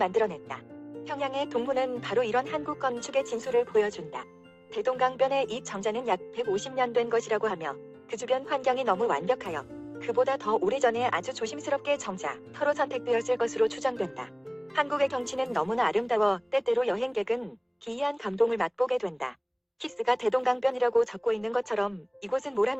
평양의 동문은 바로 이런 한국 건축의 진수를 보여준다. 대동강변의 이 정자는 약 150년 된 것이라고 하며 그 주변 환경이 너무 완벽하여 그보다 더 오래전에 아주 조심스럽게 정자, 터로 선택되었을 것으로 추정된다. 한국의 경치는 너무나 아름다워 때때로 여행객은 기이한 감동을 맛보게 된다. 키스가 대동강변이라고 적고 있는 것처럼 이곳은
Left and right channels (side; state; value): both; identical; correlation 1.00